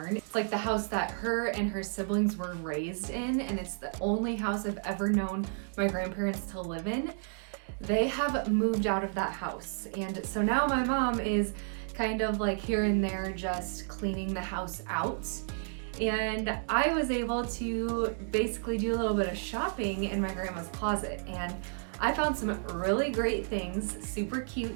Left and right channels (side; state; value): left; silent; digital silence